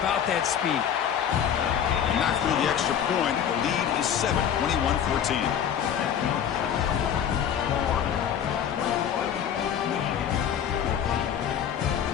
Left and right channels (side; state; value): right; quieter; 8.9 dB